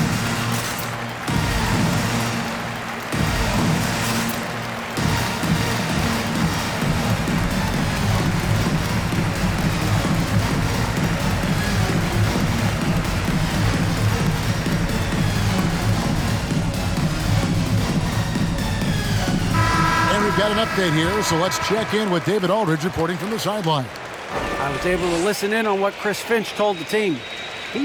Got an update here, so let's check in with David Aldridge reporting from the sideline. I was able to listen in on what Chris Finch told the team.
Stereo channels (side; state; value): both; identical; correlation 1.00